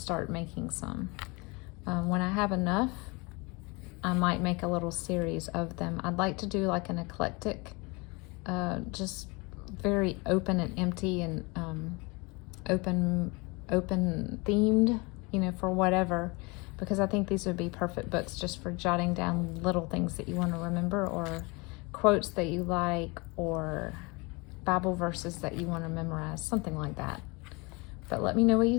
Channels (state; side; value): quieter; right; 27.3 dB